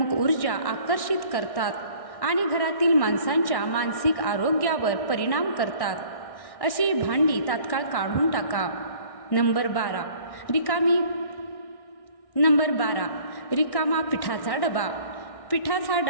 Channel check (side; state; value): right; late; 1.6 ms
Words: ऊर्जा आकर्षित करतात आणि घरातील माणसांच्या मानसिक आरोग्यावर परिणाम करतात. अशी भांडी तात्काळ काढून टाका. नंबर 12. रिकामा पिठाचा डबा. पिठाचा